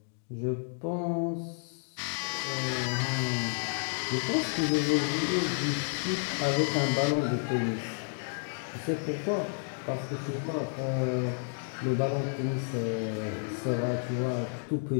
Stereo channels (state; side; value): silent; right; 57 dB below the other